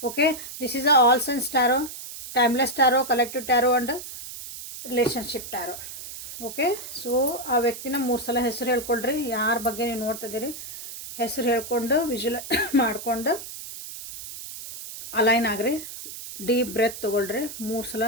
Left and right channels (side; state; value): right; noise; hiss, 11 dB below the sound